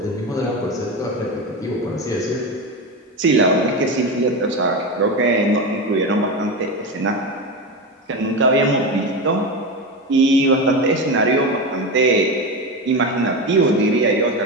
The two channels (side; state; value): both; normal; correlation 0.19